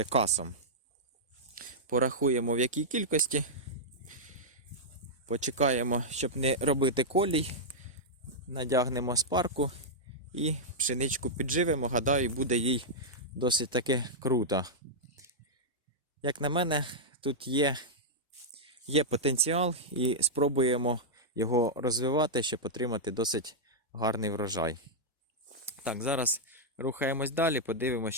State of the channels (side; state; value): both; normal; correlation -0.08